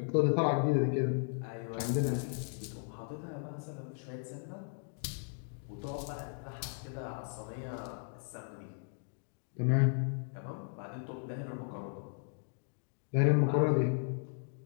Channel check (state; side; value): silent; right; 54 dB below the other